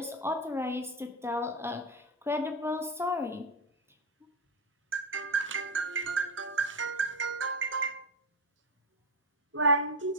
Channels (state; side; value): normal; both; correlation 0.11